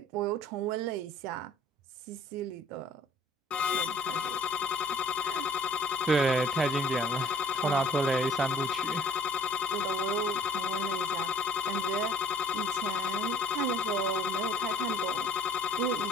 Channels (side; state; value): both; normal; correlation 0.55